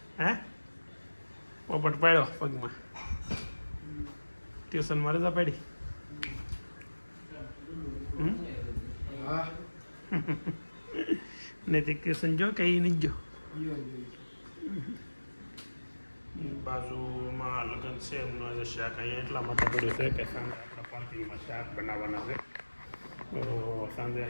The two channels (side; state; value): both; inverted; correlation -1.00